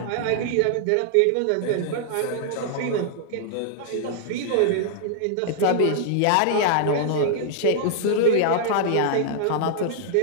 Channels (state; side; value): different; both; correlation -0.01